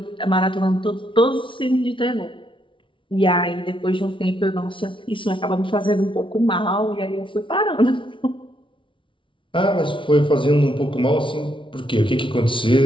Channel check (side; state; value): right; late; 0.25 ms